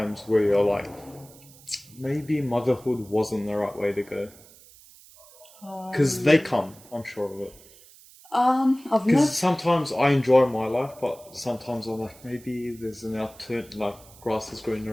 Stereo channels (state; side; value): noise; right; hiss, 23 dB below the sound